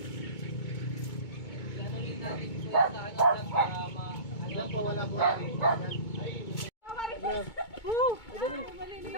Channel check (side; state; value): right; late; 2.2 ms